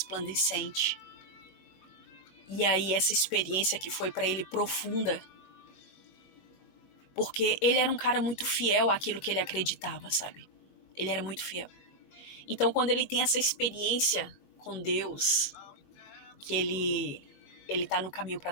E aí essa experiência que foi para ele profunda, porque ele era um cara muito fiel àquilo que ele acreditava, sabe? Ele era muito fiel. Então quando ele tem essa experiência com Deus, que ele tá no caminho para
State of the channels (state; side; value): late; right; 21 ms